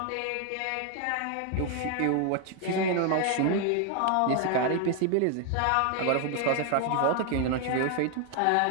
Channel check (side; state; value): both; different; correlation 0.01